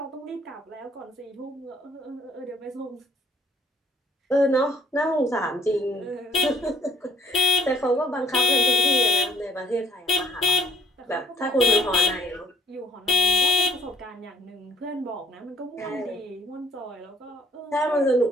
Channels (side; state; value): both; normal; correlation 0.61